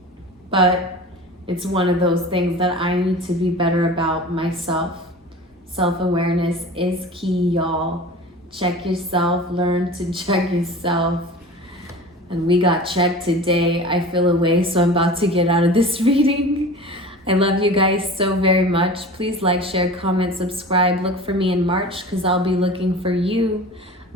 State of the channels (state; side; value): normal; both; correlation 0.37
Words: But it's one of those things that I need to be better about myself. Self-awareness is key, y'all. Check yourself, learn to check yourself. And we got checked today. I feel away, so I'm about to get out of this reading. I love you guys so very much. Please like, share, comment, subscribe. Look for me in March, because I'll be looking for you.